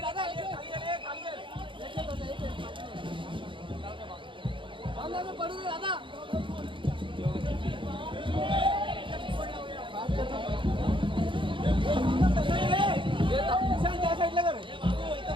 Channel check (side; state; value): left; late; 0.24 ms